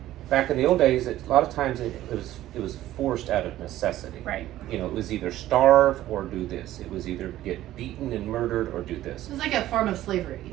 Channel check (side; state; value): left; quieter; 14.2 dB